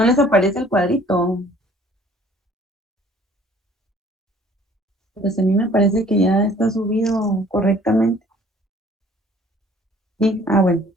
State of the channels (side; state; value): both; normal; correlation 0.55